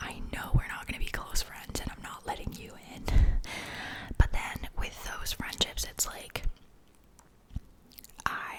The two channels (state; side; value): identical; both; correlation 1.00